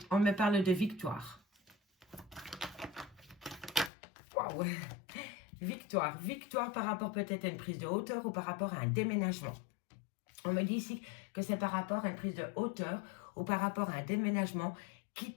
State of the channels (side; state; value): right; drops out; at 3.9 s